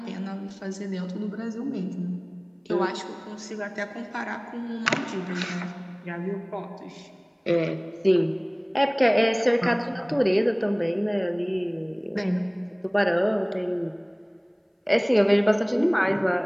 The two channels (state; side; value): identical; both; correlation 1.00